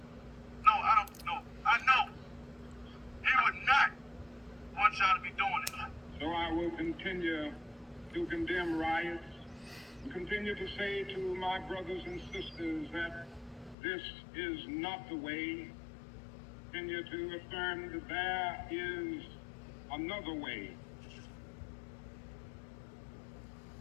No, I don't know. I know. He would not want y'all to be doing it. So I will continue to condemn riots, and continue to say to my brothers and sisters that this is not the way. Continue to affirm that there is another way.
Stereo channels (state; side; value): drops out; right; at 13.8 s